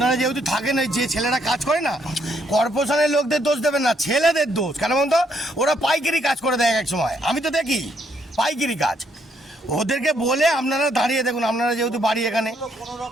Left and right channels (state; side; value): normal; both; correlation 0.72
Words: যেহেতু থাকেন, ওই যে ছেলেরা কাজ করে না, কর্পোরেশনের লোকদের দোষ দেবেন না, ছেলেদের দোষ। কেন বলুন তো, ওরা পাইকারি কাজ করে দেয় এক সময়, আমি তো দেখি পাইকারি কাজ। ওদেরকে বলে আপনারা দাঁড়িয়ে দেখুন, আপনারা যেহেতু বাড়ি এখানে,